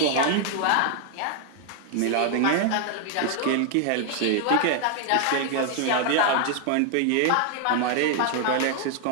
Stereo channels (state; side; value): different; both; correlation 0.00